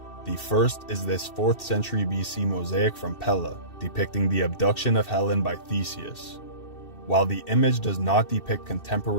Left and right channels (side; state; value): right; late; 2.7 ms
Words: The first is this 4th century BC mosaic from Pella, depicting the abduction of Helen by Theseus. While the image does not depict